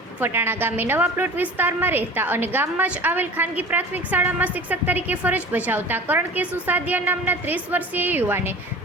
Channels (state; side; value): normal; both; correlation 0.39